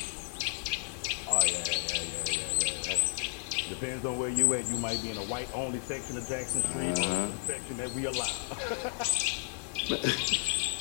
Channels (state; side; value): silent; right; digital silence